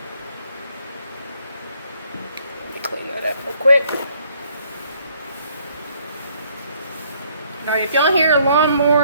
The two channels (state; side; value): inverted; both; correlation -0.65